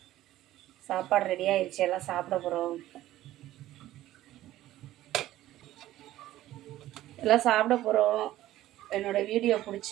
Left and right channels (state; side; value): quieter; left; 14.6 dB